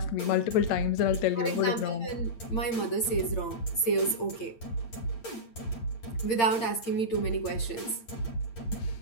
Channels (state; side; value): late; right; 8.8 ms